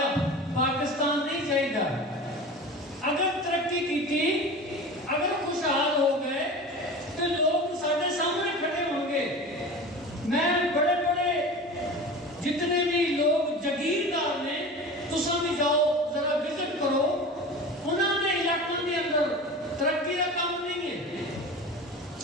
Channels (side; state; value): both; normal; correlation 0.34